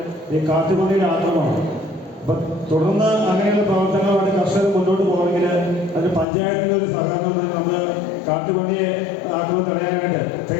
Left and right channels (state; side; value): drops out; right; at 6.2 s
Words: ഈ കാട്ടുപന്നിയുടെ ആക്രമണമാണ്. അപ്പം തുടർന്ന് അങ്ങനെയുള്ള പ്രവർത്തനങ്ങളുമായിട്ട് കർഷകർ മുന്നോട്ട് പോകണമെങ്കിൽ അതിന് പഞ്ചായത്തിൻ്റെ ഒരു സഹകരണം നമ്മൾ കാട്ടുപന്നിയെ ആക്രമണം തടയാനായിട്ട്